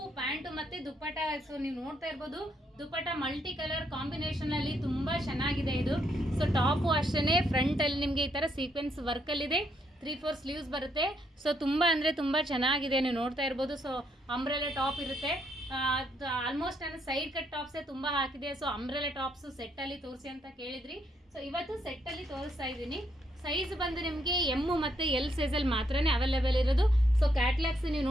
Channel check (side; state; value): both; normal; correlation 0.74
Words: pant ಮತ್ತೆ ದುಪ್ಪಟ್ಟ. ಸೊ ನೀವು ನೋಡ್ತಾ ಇರ್ಬೋದು, ದುಪ್ಪಟ್ಟ ಮಲ್ಟಿ ಕಲರ್ ಕಾಂಬಿನೇಷನ್ ಅಲ್ಲಿ ತುಂಬಾ ಚೆನ್ನಾಗಿದೆ ಇದು. ಸೊ ಟಾಪು ಅಷ್ಟೇ ಫ್ರಂಟ್ ಅಲ್ಲಿ ನಿಮಗೆ ಈ ತರ ಸೀಕ್ವೆನ್ಸ್ ವರ್ಕ್ ಅಲ್ಲಿ ಇದೆ. 3/4 ಸ್ಲೀವ್ಸ್ ಬರುತ್ತೆ. ಸೊ ತುಂಬಾ ಅಂದ್ರೆ ತುಂಬಾ ಚೆನ್ನಾಗಿದೆ, ನೀವು ನೋಡ್ತಾ ಇರ್ಬೋದು. ಸೊ ಅಂಬ್ರೆಲಾ ಟಾಪ್ ಇರುತ್ತೆ. ಆಲ್ಮೋಸ್ಟ್ ನಾನು ಸೈಡ್ ಕಟ್ ಟಾಪ್ಸೇ ತುಂಬಾ ಹಾಕಿದೆ. ಸೊ ಅಂಬ್ರೆಲಾ ಟಾಪ್ಸ್ ಸೆಟ್ ಅಲ್ಲಿ ತೋರಿಸಿ ಅಂತ ಕೇಳಿದ್ರಿ. ಸೊ ಇವತ್ತು ಸೆಟ್ ಅಲ್ಲಿ ತೋರಿಸ್ತಾ ಇದ್ದೀನಿ. ಸೈಜ್ ಬಂದು ನಿಮಗೆ ಎಮ್ ಮತ್ತು ಎಲ್ ಸೈಜಲ್ಲಿ ಮಾತ್ರನೇ ಅವೈಲೇಬಲ್ ಇರೋದು. ಸೊ ಕ್ಯಾಟ್ಲಾಗ್ಸ್ ನೀವು